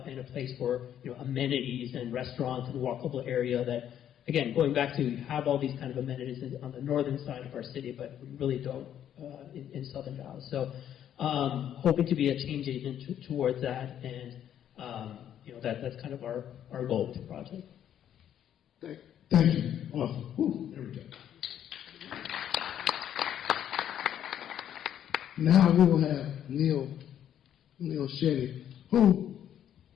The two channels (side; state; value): right; quieter; 10.2 dB